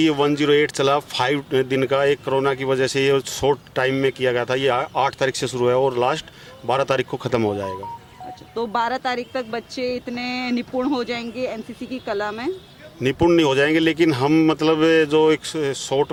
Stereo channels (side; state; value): both; identical; correlation 1.00